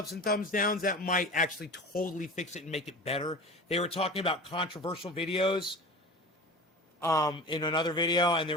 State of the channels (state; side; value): normal; both; correlation 0.35